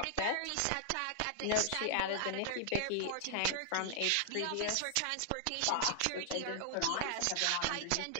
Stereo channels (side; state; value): both; different; correlation -0.01